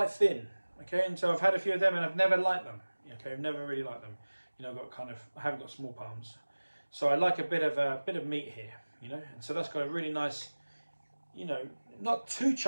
thin. Okay, and so I've had a few of them and I've never liked them. Okay, I've never really liked them. I haven't got small palms. So I like a bit of meat here, and so that's got a really nice, not too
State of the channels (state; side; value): inverted; both; correlation -1.00